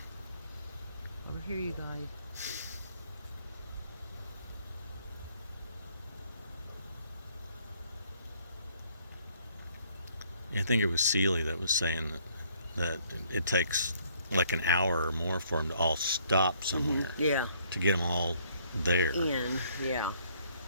here, you guys. I think it was Seeley that was saying that it takes like an hour or more for them to all stop somewhere Yeah. to get them all there. In. Yeah.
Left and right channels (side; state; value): both; inverted; correlation -0.65